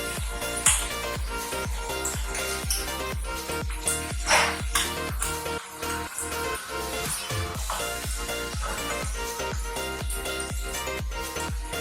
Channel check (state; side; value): identical; both; correlation 1.00